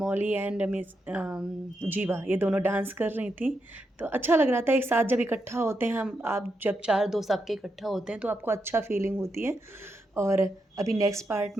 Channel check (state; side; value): normal; both; correlation 0.84